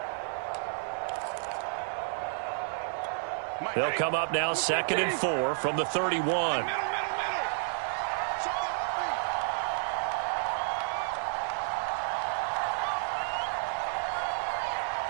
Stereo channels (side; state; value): left; silent; digital silence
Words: They'll come up now 2nd and 4 from the 31.